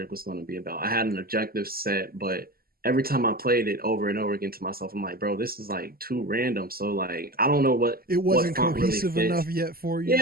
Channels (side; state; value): left; late; 0.43 ms